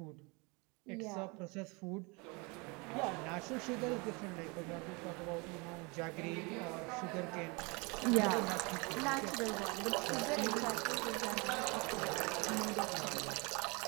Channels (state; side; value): quieter; left; 28.9 dB